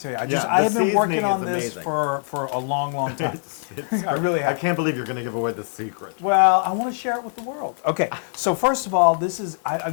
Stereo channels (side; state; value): right; silent; digital silence